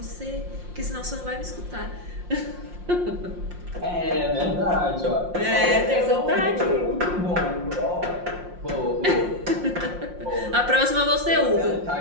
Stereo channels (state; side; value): late; left; 5.6 ms